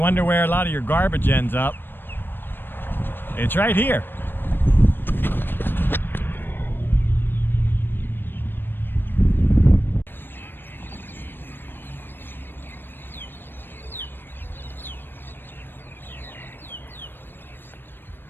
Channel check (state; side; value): late; right; 0.097 ms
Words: where a lot of your garbage ends up, it's right here.